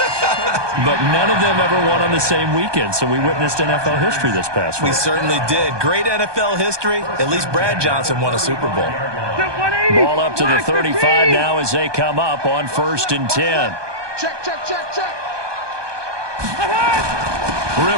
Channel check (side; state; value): left; late; 1.2 ms